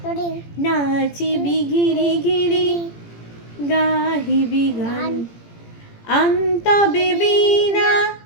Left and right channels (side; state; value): right; late; 17 ms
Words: নড়ি নাচিবি ঘিরি ঘিরি, গাহিবি গান, আন্তবে বীণা,